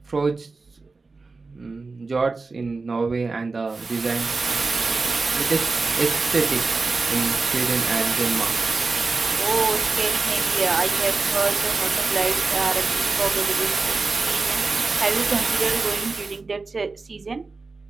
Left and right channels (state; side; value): quieter; left; 3.9 dB